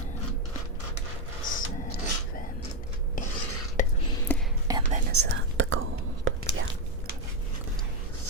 7, 8. And then is that the gold? Yeah.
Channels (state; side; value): normal; both; correlation 0.06